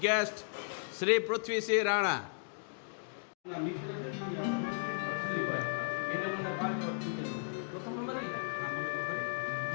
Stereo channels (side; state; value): right; silent; digital silence